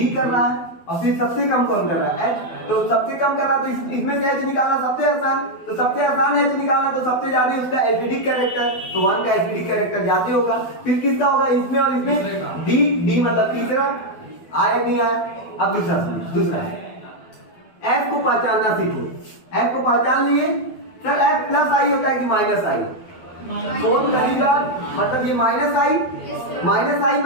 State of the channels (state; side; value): late; right; 12 ms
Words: कर रहा है, और फिर सबसे कम कौन कर रहा है, H। तो सबसे कम कर रहा है तो इसमें से H निकालना सबसे आसान, तो सबसे आसान H निकालना, तो सबसे ज्यादा उसका एसिडिक कैरेक्टर, तो 1 का एसिडिक कैरेक्टर ज्यादा होगा। फिर किसका होगा, इसमें और इसमें, D मतलब तीसरा, आया नहीं आया? अब दूसरा F को पहचानना सीखो, F को पहचान लिए, सर F प्लस आई होता है कि माइनस आई, फोर्थ कहीं बात, मतलब ये माइनस आई